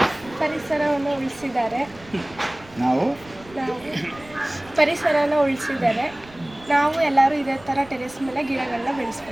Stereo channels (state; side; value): noise; right; rumble, 22 dB below the sound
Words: ಪರಿಸರವನ್ನು ಉಳಿಸಿದ್ದಾರೆ, ನಾವು ಪರಿಸರನ ಉಳಿಸಿದ್ದಾರೆ. ನಾವು ಎಲ್ಲರೂ ಇದೇ ಥರ ಟೆರೆಸ್ ಮೇಲೆ ಗಿಡಗಳನ್ನ